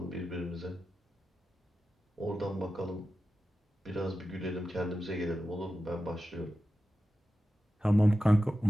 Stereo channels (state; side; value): normal; both; correlation 0.92